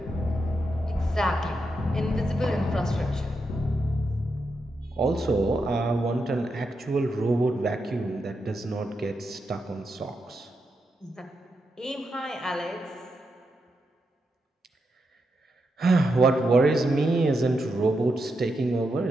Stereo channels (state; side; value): normal; both; correlation 0.84